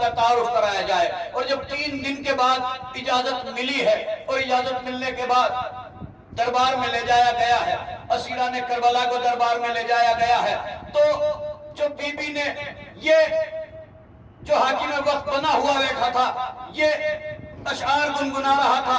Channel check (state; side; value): identical; both; correlation 1.00